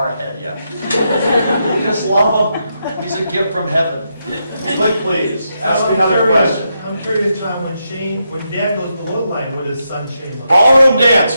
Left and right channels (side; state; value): both; inverted; correlation -0.82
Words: ahead yet." You just love him. He's a gift from heaven. Click, please. Ask me another question. I'm curious, Tom, when Dad goes below the line, what does son Shane look like? Ballroom dance